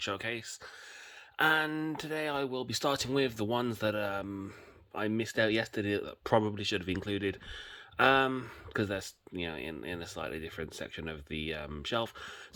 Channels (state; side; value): identical; both; correlation 1.00